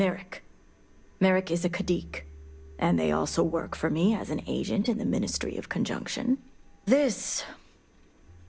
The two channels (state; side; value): identical; both; correlation 1.00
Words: Merrick is a Kadik, and they also work for me as an agent in the Ministry of Conjunction. This